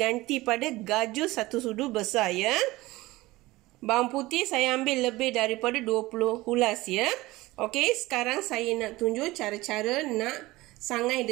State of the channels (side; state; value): left; quieter; 19.4 dB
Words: pada gajus 1 sudu besar ya. Bawang putih saya ambil lebih daripada 20 hulas ya. Okey, sekarang saya nak tunjuk cara-cara nak sangai